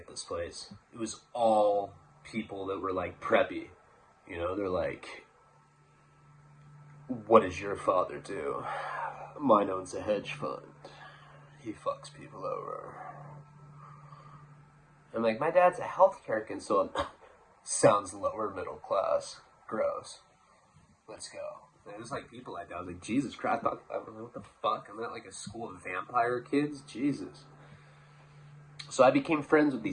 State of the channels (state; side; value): identical; both; correlation 1.00